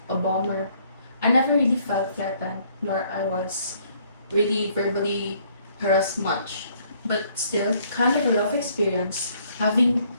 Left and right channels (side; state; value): both; inverted; correlation -0.64